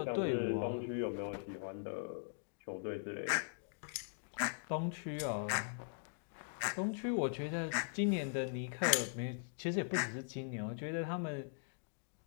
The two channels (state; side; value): silent; right; digital silence